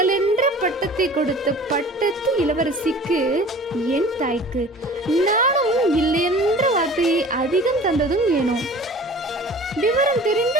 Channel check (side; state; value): both; normal; correlation 0.43